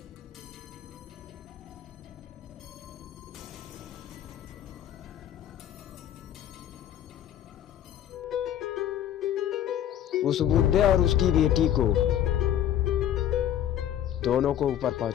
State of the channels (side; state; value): right; quieter; 10.8 dB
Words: उस बुड्ढे और उसकी बेटी को दोनों को ऊपर